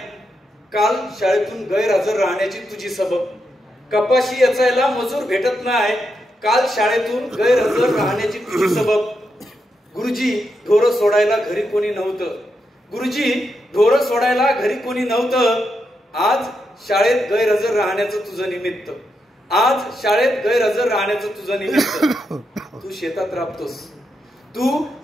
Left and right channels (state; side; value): normal; both; correlation 0.84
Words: काल शाळेतून गैरहजर राहण्याची तुझी सबब. कपाशी वेचायला मजूर भेटत नाही काल शाळेतून गैरहजर राहण्याची तुझी सबब. गुरुजी ढोरं सोडायला घरी कोणी नव्हतं. गुरुजी ढोरं सोडायला घरी कोणी नव्हतं. आज शाळेत गैरहजर राहण्याचं तुझं निमित्त. आज शाळेत गैरहजर राहण्याचं तुझं निमित्त. तू शेतात राबतोस. तू